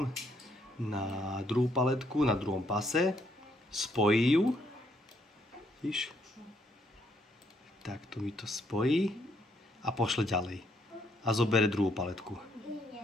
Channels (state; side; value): normal; both; correlation 0.72